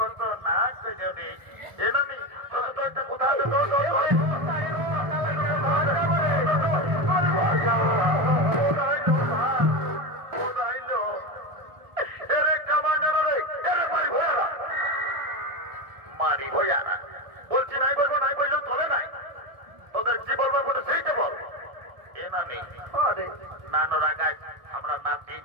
না করে আমি একটা কোথাও মারি ভয়ারা বলছি, নাই বলবো, নাই বললেও চলে নাই। তোদের কি বলবো বলে সেইটা বল। এ নানি নানো রাগাই আমরা নাতি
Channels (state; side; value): late; left; 1.4 ms